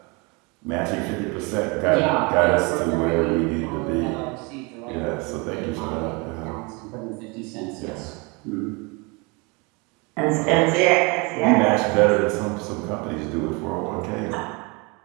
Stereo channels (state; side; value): quieter; left; 28.9 dB